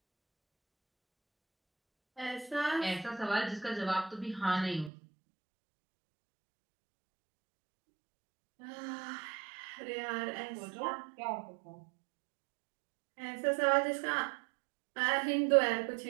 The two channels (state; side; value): drops out; left; at 4.9 s